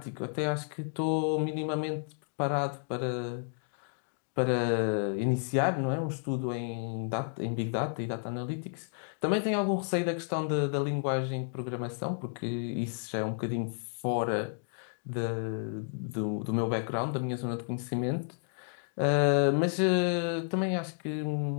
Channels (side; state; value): right; silent; digital silence